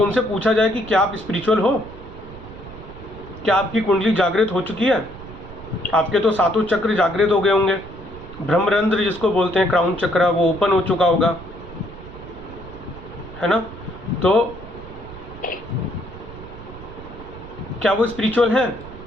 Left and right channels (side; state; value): right; noise; rumble, 15 dB below the sound